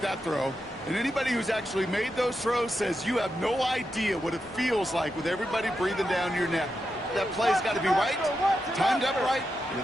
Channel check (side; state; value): both; normal; correlation 0.87